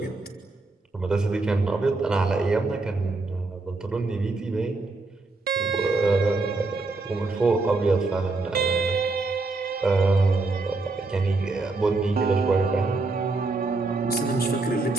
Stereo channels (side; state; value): left; quieter; 3.4 dB